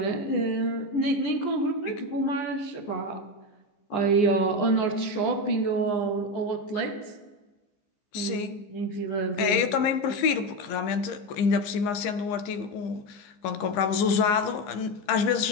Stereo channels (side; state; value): right; late; 15 ms